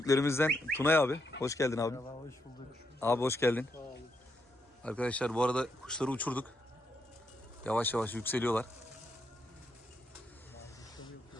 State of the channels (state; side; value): normal; both; correlation 0.79